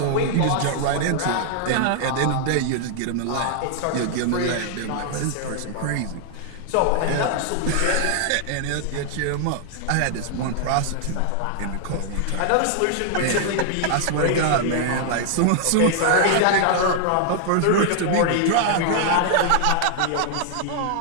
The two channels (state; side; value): different; both; correlation 0.00